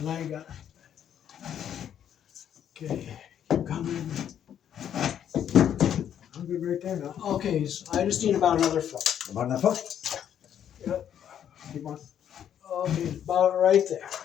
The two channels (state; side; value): quieter; right; 9.6 dB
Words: I ain't got. Okay, keep coming. I'm good right there now. Okay, so I just need about another foot. About enough hook? Yep. Keep on. Okay, about right there.